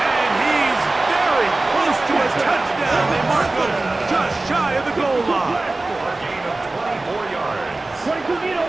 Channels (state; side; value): quieter; left; 3.0 dB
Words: And he's very close to a touchdown. They mark him just shy of the goal line. A gain of 24 yards.